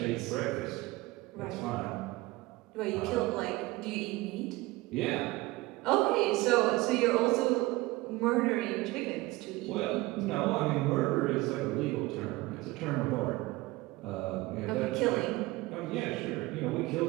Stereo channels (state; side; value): quieter; left; 20.5 dB